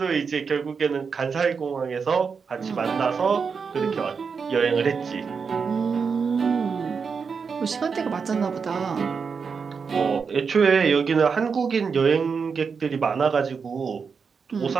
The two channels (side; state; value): left; quieter; 5.7 dB